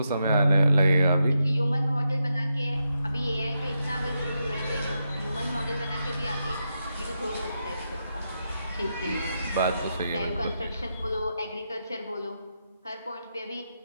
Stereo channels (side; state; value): both; inverted; correlation -0.85